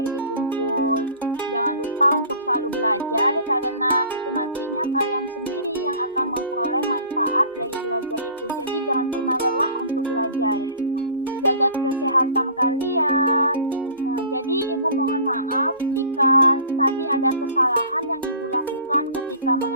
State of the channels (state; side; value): inverted; both; correlation -0.45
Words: dikumpul. Jangan lupa untuk selalu belajar karena itu nantinya kalian sendiri yang akan memperoleh manfaat dari belajar itu. Jadi jangan pernah lelah untuk belajar. Jaga kesehatan kalian. Jadi Ibu mohon maaf jika tadi ada kesalahan yang Ibu lakukan ketika